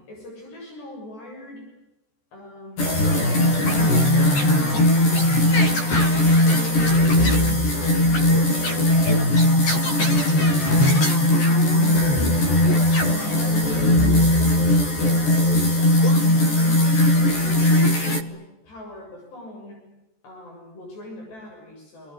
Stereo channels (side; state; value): right; late; 14 ms